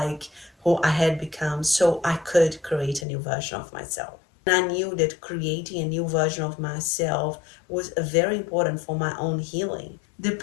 who I had become, so I could create a new version of myself. And I knew that creating a new version of myself was very important for my own healing. The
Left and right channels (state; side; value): drops out; right; at 3.1 s